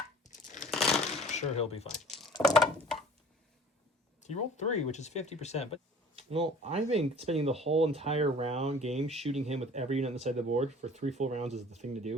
Sure, he'll be fine. He rolled 3, which is 50%. But well, I think spending the whole entire game shooting him with every unit on the side of the board for 3 full rounds is the thing to do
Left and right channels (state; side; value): normal; both; correlation 0.48